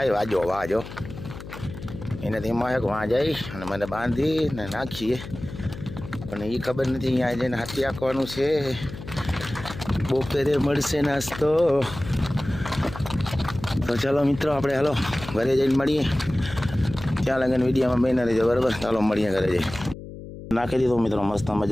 વાજો એનાથી એમાં એક વાં જાય અને મને બાંધીને નાખીએ પણ એ ખબર નથી અહીંયા જઈને હાથી આંકવાનું છે. બપોરે મળશે નાસ્તો. તો ચાલો મિત્રો આપણે હાલો ઘરે જઈને મળીએ. ત્યાં લગન વિડીયોમાં બહેના રહેજો બરાબર. ચાલો મળીએ ઘરે જઈ. નાખી દીધું મિત્રો મસ્ત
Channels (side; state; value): left; noise; hum, 13 dB below the sound